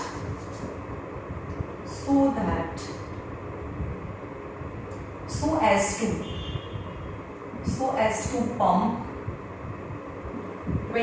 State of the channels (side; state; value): both; identical; correlation 1.00